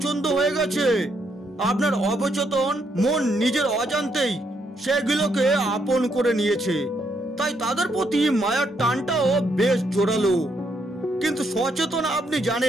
হয়ে গেছে। আপনার অবচেতন মন নিজের অজান্তেই সেগুলোকে আপন করে নিয়েছে, তাই তাদের প্রতি মায়ার টানটাও বেশ জোরালো। কিন্তু সচেতন আপনি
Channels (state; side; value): normal; both; correlation 0.75